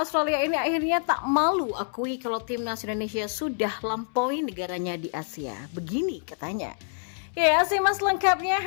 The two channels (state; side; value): silent; right; 60 dB below the other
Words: ini akhirnya tak malu akui kalau Timnas Indonesia sudah lampaui negaranya di Asia. Begini katanya. Ya, simak lengkapnya